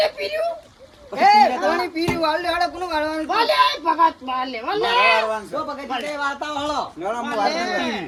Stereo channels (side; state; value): both; identical; correlation 1.00